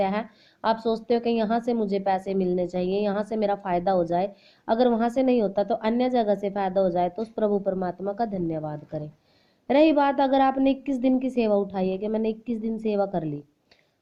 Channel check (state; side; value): identical; both; correlation 1.00